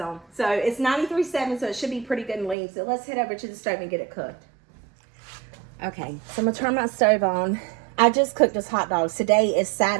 on. So it's 93.7, so it should be pretty good and lean. So let's head over to the stove and get it cooked. Okay, so I'm going to turn my stove on. I just cooked this hot dogs. Today is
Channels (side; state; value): left; drops out; at 2.6 s